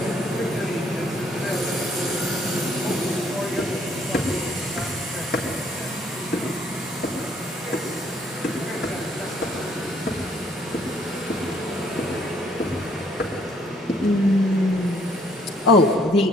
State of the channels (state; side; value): normal; both; correlation 0.65